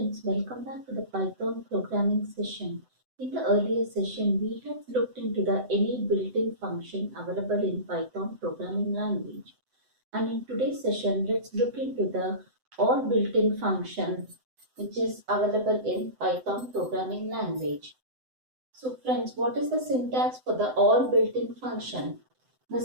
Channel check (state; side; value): late; left; 7.8 ms